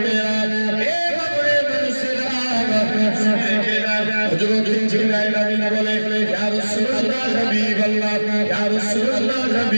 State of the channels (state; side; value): inverted; both; correlation -1.00